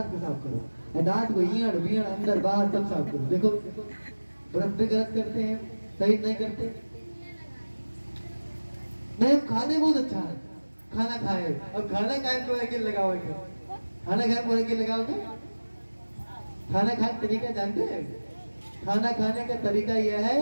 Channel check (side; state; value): both; inverted; correlation -1.00